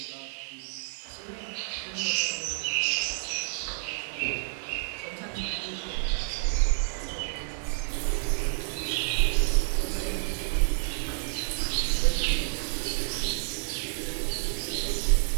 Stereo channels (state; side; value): silent; left; 58 dB below the other